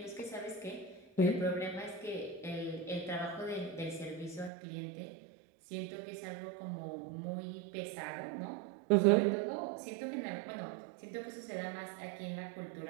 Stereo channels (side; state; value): left; drops out; at 4.5 s